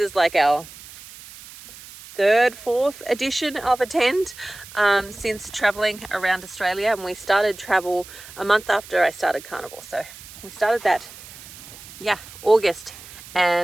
like our fourth edition of a tent since traveling around Australia, and we started travel a month after I started Carnivore. So we started that August,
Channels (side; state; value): right; noise; hiss, 17 dB below the sound